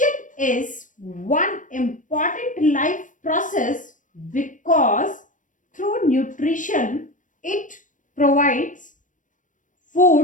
is one important life process because through nutrition it provides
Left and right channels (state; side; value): late; right; 0.37 ms